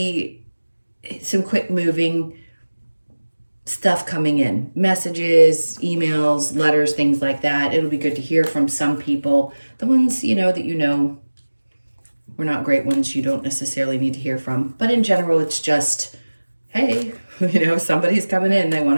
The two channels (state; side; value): inverted; both; correlation -1.00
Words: some quick moving stuff coming in. Messages, emails, letters, things like that. It'll be good to hear from some people. The ones, that were not great ones you don't necessarily need to hear from. But in general, it's just, hey, somebody's coming in. They